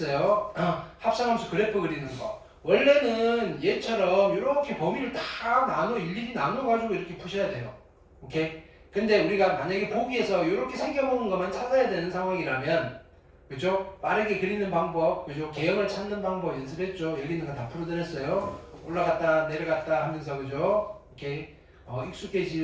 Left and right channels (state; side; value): identical; both; correlation 1.00